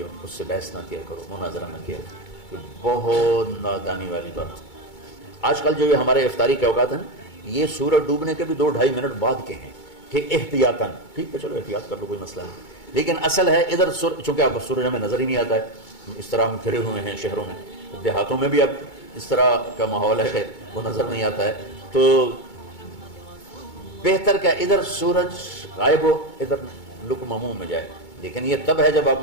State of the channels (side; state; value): right; late; 2.2 ms